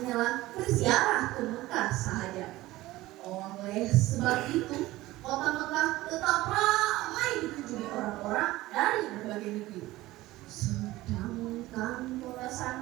berziarah ke Mekah sahaja. Oleh sebab itu, kota Mekah tetap ramai dikunjungi orang-orang dari berbagai negeri. Sedangkan kota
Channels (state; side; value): quieter; left; 17.7 dB